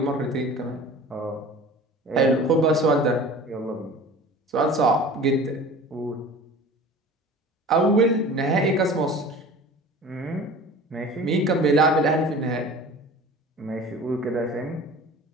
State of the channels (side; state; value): both; normal; correlation 0.41